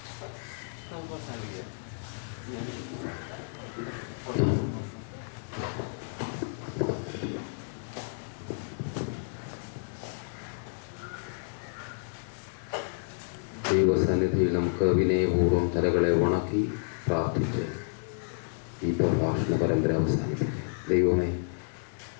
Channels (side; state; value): right; silent; digital silence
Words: ദൈവസന്നിധിയിൽ നമുക്ക് വിനയപൂർവ്വം തലകളെ വണക്കി പ്രാർത്ഥിച്ച് ഈ പ്രഭാഷണ പരമ്പര അവസാനിപ്പിക്കുക. ദൈവമേ,